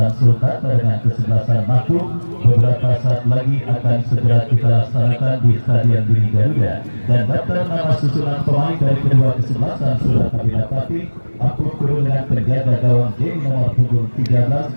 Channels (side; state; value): both; inverted; correlation -1.00